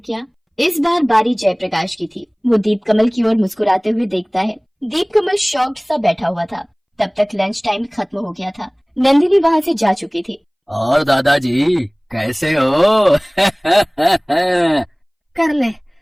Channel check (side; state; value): both; identical; correlation 1.00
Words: क्या? इस बार बारी जयप्रकाश की थी। वो दीप कमल की ओर मुस्कुराते हुए देखता है। दीप कमल शॉक्ड सा बैठा हुआ था। तब तक लंच टाइम खत्म हो गया था। नंदिनी वहाँ से जा चुकी थी। और दादाजी कैसे हो? कर ले,